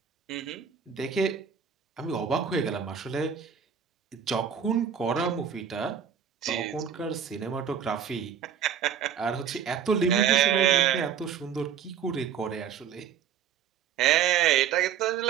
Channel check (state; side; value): quieter; left; 8.2 dB